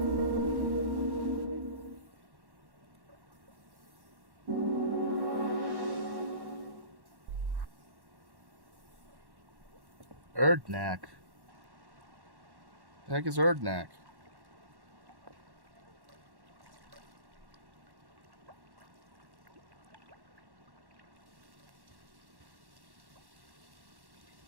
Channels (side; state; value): left; late; 1.1 ms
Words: Erdnak. The heck is Erdnak?